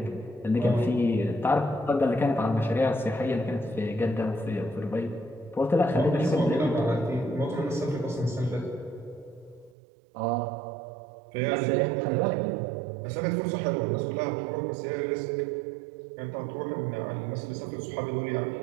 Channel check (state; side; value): drops out; left; at 9.8 s